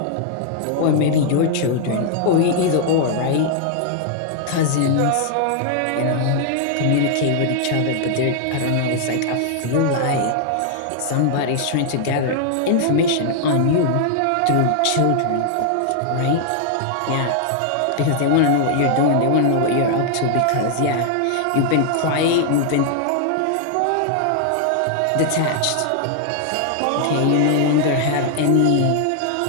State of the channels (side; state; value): both; different; correlation 0.00